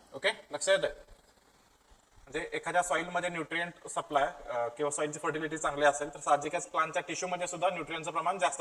Okay, लक्षात येतं? म्हणजे एखाद्या सॉइल मध्ये न्यूट्रिएंट सप्लाय किंवा सॉइलची फर्टिलिटी चांगली असेल तर साहजिकच प्लांटच्या टिश्यू मध्ये सुद्धा न्यूट्रिएंटचं प्रमाण जास्त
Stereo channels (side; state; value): both; identical; correlation 1.00